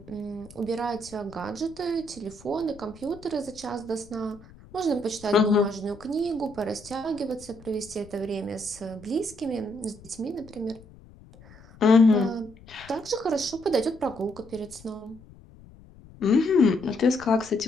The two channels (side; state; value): left; noise; rumble, 22 dB below the sound